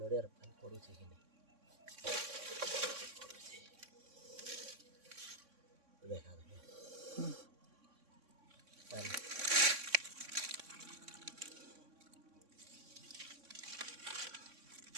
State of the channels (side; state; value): left; late; 3.6 ms